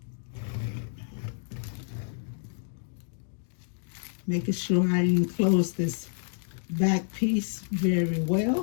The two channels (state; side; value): silent; right; digital silence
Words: Making sure I enclose this back piece very